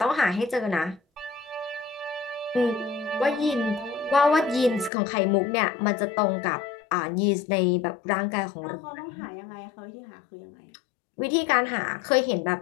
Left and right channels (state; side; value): drops out; right; at 4.9 s